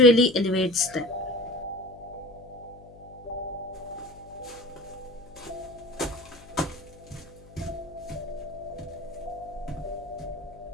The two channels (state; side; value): noise; left; hum, 21 dB below the sound